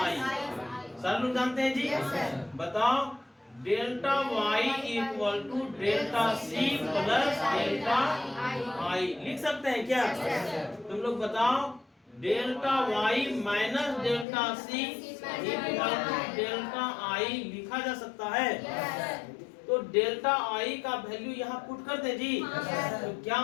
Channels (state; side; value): drops out; right; at 14.2 s